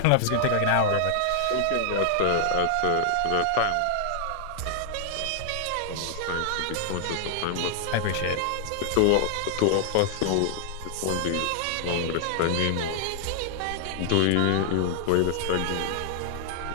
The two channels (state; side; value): different; both; correlation 0.00